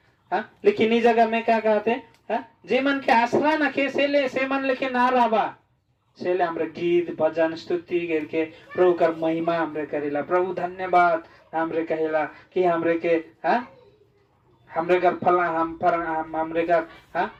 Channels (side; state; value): both; identical; correlation 1.00